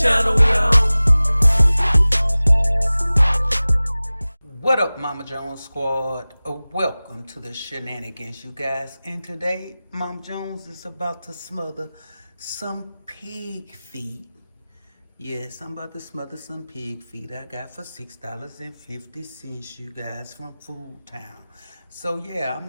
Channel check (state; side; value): inverted; both; correlation -0.98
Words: we on. What up, Mama Jones squad? Welcome to the shenanigans, you guys. And today, Mama Jones is about to smother some pig feet. Yes, I'm about to smother some pig feet I got for $6.50, you guys, from Food Town. So yeah,